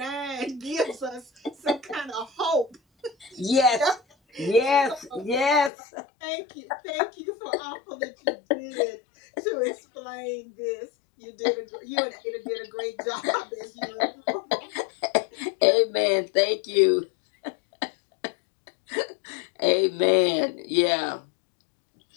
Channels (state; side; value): drops out; right; at 5.7 s